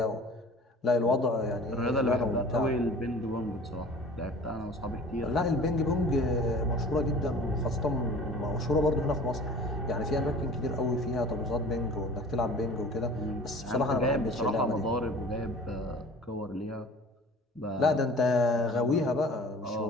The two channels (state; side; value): normal; both; correlation 0.44